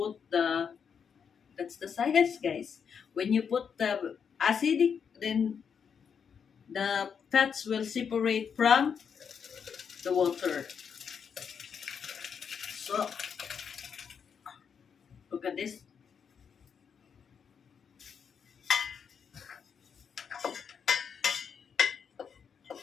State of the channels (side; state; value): right; quieter; 6.9 dB